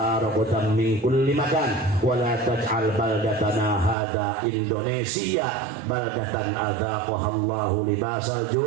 ragadan min kulli makan wa la taj'al baldatana hadza Indonesia baldatan adzaqaha Allahu libasal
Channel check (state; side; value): drops out; left; at 4.0 s